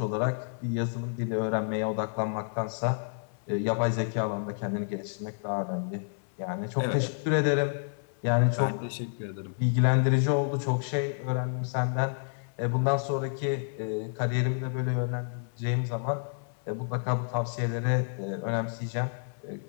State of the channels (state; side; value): silent; right; 58 dB below the other